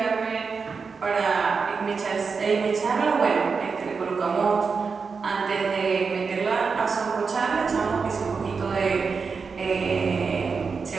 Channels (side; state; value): left; quieter; 5.2 dB